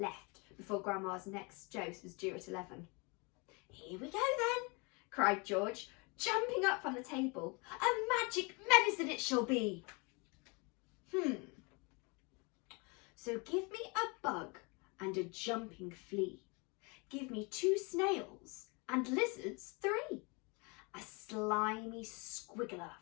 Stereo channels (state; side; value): quieter; right; 30.0 dB